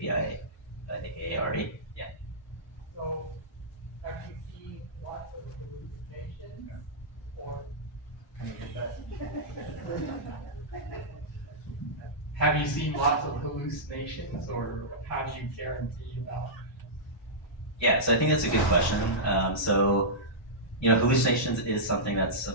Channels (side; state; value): both; normal; correlation -0.14